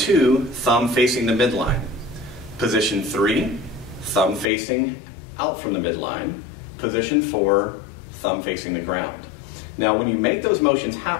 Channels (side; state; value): right; drops out; at 4.5 s